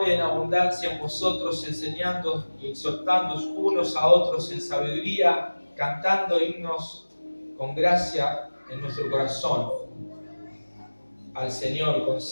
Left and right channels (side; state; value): both; inverted; correlation -1.00